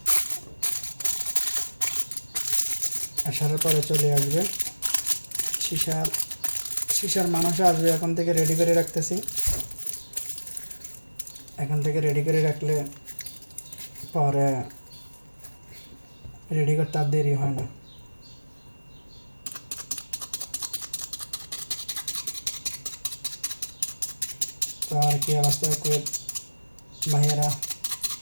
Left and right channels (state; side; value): inverted; both; correlation -1.00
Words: আসার পরে চলে আসবে শিশার মানুষ আসবে। এখন থেকে রেডি করে রাখতেছি। এখন থেকে রেডি করে রাখলে পরে রেডি করতে আর দেরি হয় না। তো আর কি অবস্থা কুয়েত ভাইয়েরা,